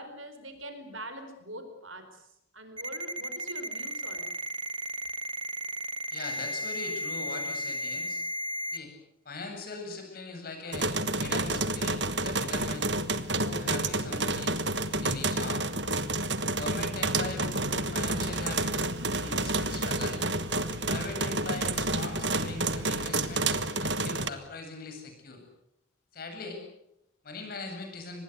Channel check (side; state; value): both; normal; correlation 0.00